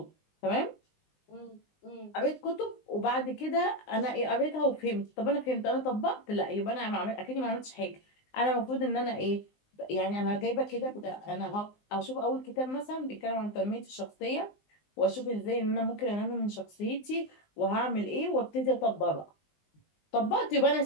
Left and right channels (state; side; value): late; right; 19 ms